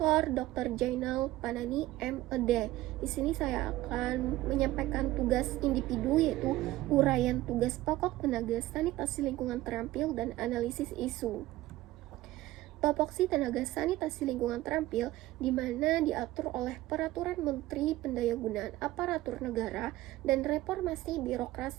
Dr. Jainal Panani MED. Di sini saya akan menyampaikan tugas individu, yaitu uraian tugas pokok tenaga sanitasi lingkungan terampil dan analisis isu. Topoksi tenaga sanitasi lingkungan terampil di mana diatur oleh Peraturan Menteri Pendayagunaan Aparatur Negara dan Reformasi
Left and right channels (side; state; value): left; quieter; 16.4 dB